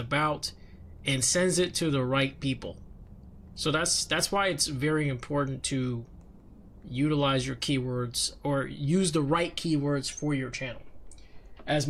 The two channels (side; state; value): both; identical; correlation 1.00